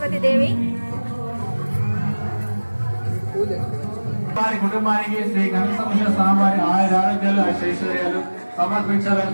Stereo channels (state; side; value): inverted; both; correlation -1.00